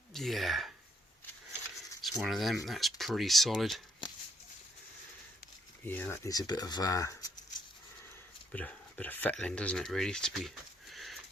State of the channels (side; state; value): both; normal; correlation 0.71